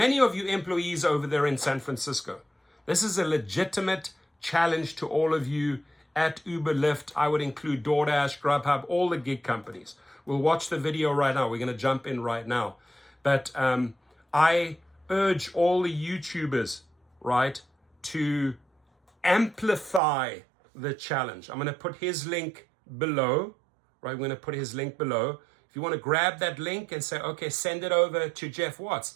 of you employees over there in San Francisco. This is a legitimate challenge to all of you at Uber, Lyft. I would include Doordash, Grubhub, all the gig companies. We'll watch the video right now. We're going to jump in right now. But I urge all the YouTubers, right, to amplify the challenge. I'm going to put his link below, right? I'm going to put his link below. If you want to grab that link and say, okay, send it over to Jeff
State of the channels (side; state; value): left; drops out; at 20.0 s